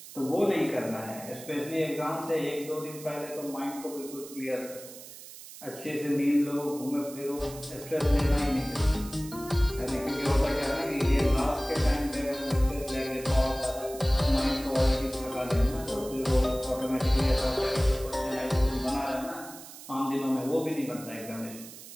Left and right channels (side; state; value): right; noise; hiss, 15 dB below the sound